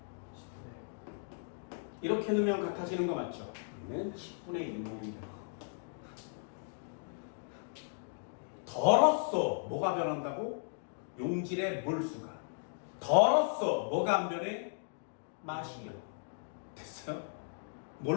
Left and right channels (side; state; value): right; silent; digital silence